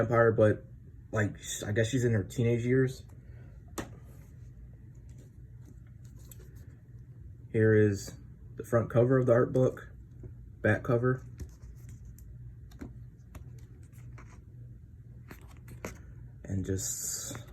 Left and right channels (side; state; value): both; identical; correlation 1.00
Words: but like, I guess she's in her teenage years. Here is the front cover of the art book, back cover. and just